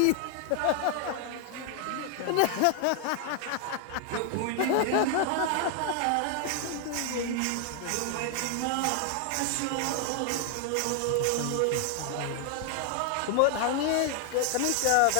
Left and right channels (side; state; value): both; different; correlation 0.00